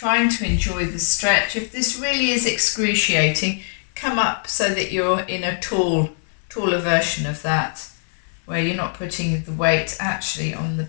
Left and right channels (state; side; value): silent; right; digital silence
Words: to enjoy the stretch. If this really is excruciating, come up so that you're in a taller version of that, where you're not putting the weight actually on the